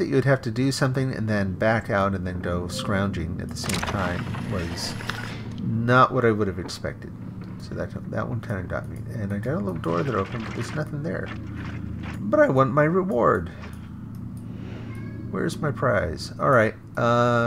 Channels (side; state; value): both; identical; correlation 1.00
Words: you would have to do something and then back out and then go scrounging at the same time was not what I would have expected. So that one kind of got me. And I got a little door that opened, but there's nothing there. But I want my reward. Where's my prize? Alright,